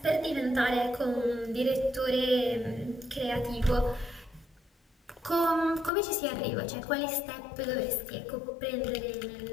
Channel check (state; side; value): drops out; right; at 5.9 s